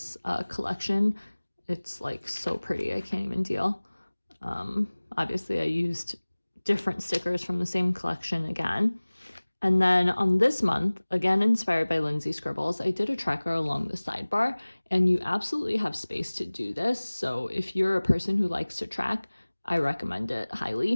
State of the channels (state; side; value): inverted; both; correlation -1.00